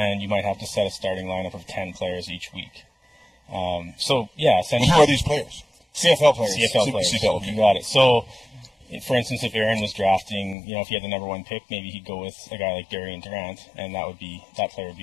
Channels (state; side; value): drops out; right; at 10.6 s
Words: you might have to set a starting lineup of 10 players each week. Essentially. Who are these players? CFL players. CFL players. CFL, okay. You got it. So, for instance, if Aaron was drafting, if he had the number 1 pick, maybe he'd go with a guy like Darian Durant, and that player would